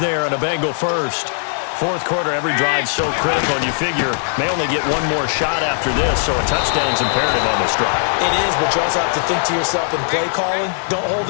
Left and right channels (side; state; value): right; silent; digital silence